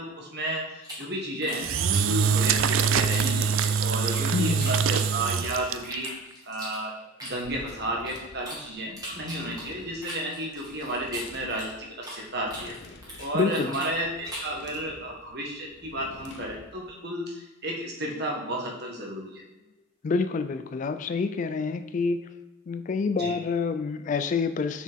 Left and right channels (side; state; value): both; normal; correlation 0.35